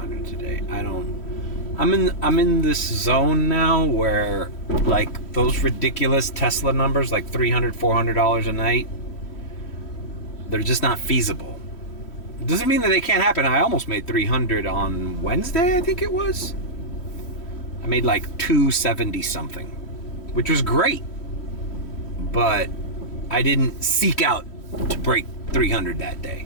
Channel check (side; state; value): right; late; 3.1 ms